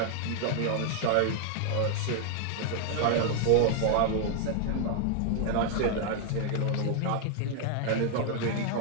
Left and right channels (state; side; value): different; both; correlation 0.00